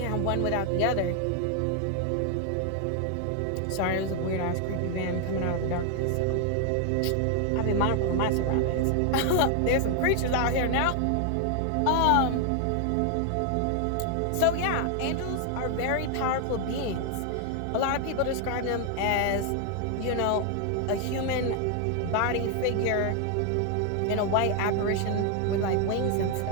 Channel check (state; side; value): different; both; correlation 0.00